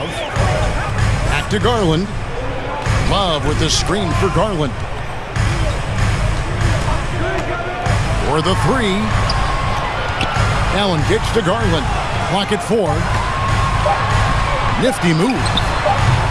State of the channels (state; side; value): identical; both; correlation 1.00